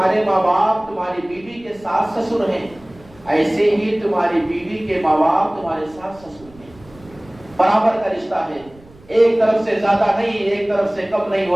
ماں باپ تمہاری بیوی کے ساتھ سسر ہیں، ایسے ہی تمہاری بیوی کے ماں باپ تمہارے ساتھ سسر ہیں، برابر کا رشتہ ہے، ایک طرف سے زیادہ نہیں، ایک طرف سے کم نہیں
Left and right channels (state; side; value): noise; right; rumble, 24 dB below the sound